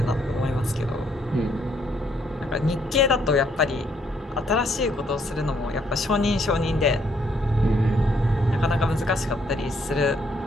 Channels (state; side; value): normal; both; correlation 0.70